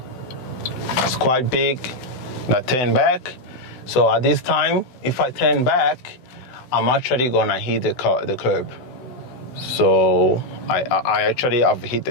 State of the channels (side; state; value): right; late; 16 ms